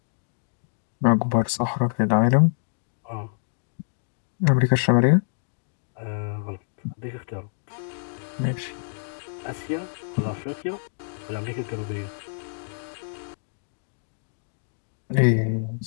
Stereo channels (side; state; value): right; silent; digital silence